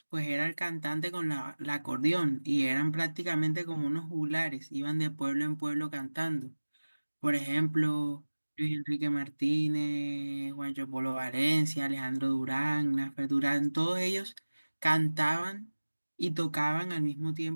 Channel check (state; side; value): inverted; both; correlation -1.00